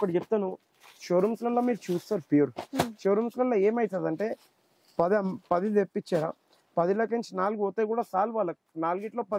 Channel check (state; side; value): identical; both; correlation 1.00